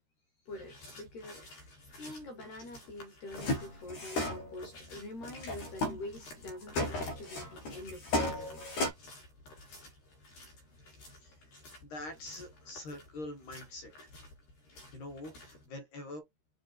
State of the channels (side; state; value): right; late; 13 ms